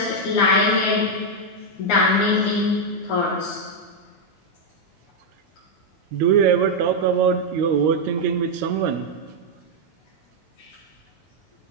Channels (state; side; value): normal; both; correlation 0.00